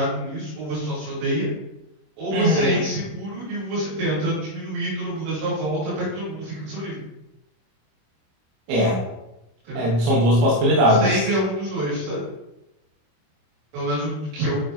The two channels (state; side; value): late; left; 26 ms